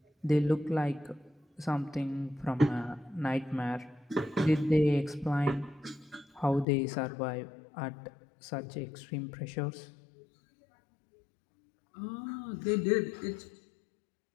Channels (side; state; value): right; drops out; at 6.7 s